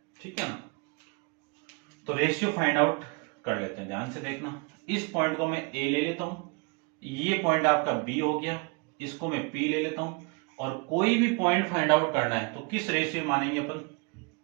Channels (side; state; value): left; quieter; 31.1 dB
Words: ठीक है ना, तो रेशियो फाइंड आउट कर लेते हैं, ध्यान से देखना। इस पॉइंट को मैं ए ले लेता हूं, ये पॉइंट आपका बी हो गया, इसको मैं पी ले लेता हूं, और कोई भी पॉइंट फाइंड आउट करना है तो किस रेशियो मानेंगे अपन?